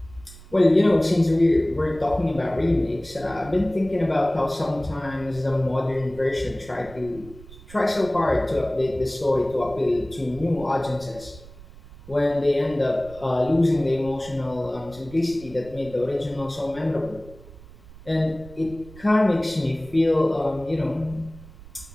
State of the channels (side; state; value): right; noise; rumble, 19 dB below the sound